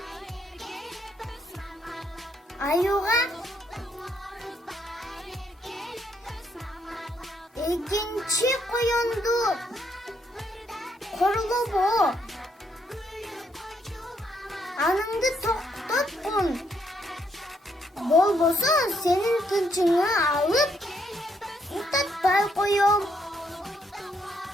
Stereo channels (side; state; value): both; normal; correlation 0.73